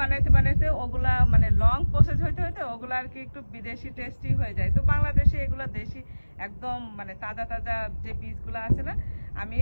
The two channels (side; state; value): both; inverted; correlation -1.00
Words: বানাইতে ওগুলা মানে লং প্রসেস হইতে ওগুলা আর কি একটু বিদেশি টেস্টি হয়ে যায়। তো বাংলাদেশে এগুলা দেশি একদম মানে তাজা তাজা যে বীজগুলো আছে না, আমি